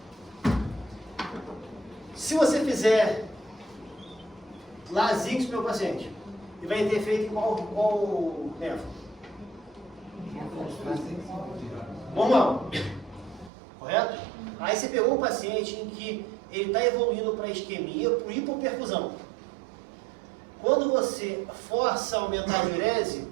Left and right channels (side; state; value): left; drops out; at 13.5 s